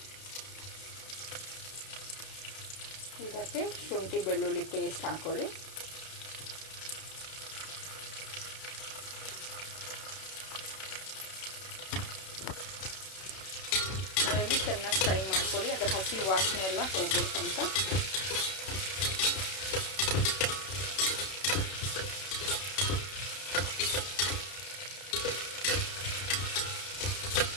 ಇದಕ್ಕೆ ಶುಂಠಿ ಬೆಳ್ಳುಳ್ಳಿ ಪೇಸ್ಟ್ ಹಾಕ್ಕೊಳ್ಳಿ. ಅದನ್ನು ಚೆನ್ನಾಗಿ ಫ್ರೈ ಮಾಡ್ಕೊಳ್ಳಿ. ಅದು ಹಸಿ ವಾಸನೆ ಎಲ್ಲ ಹೋಗ್ಬೇಕಂತ.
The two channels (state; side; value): late; right; 32 ms